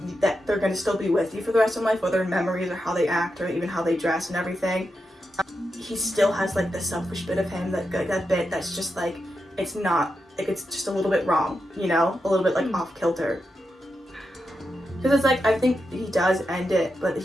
that they're going to still be with you for the rest of life, whether in memories or how they act or even how they dress and everything, he still has like the selfish bit of him, that bit that's just like it's not like, it's just a little bit wrong, you know, a little bit like off kilter, because it's like I think he does end it, but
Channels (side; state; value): both; normal; correlation 0.87